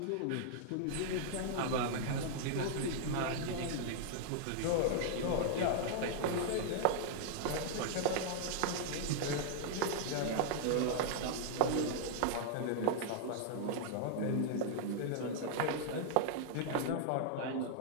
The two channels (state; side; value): different; both; correlation -0.01